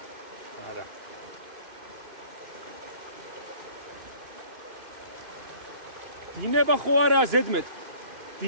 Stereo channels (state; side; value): late; left; 2.9 ms